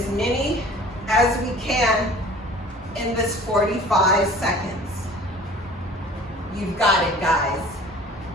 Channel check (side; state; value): both; normal; correlation 0.46